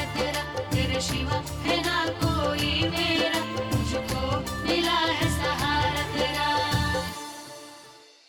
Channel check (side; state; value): both; identical; correlation 1.00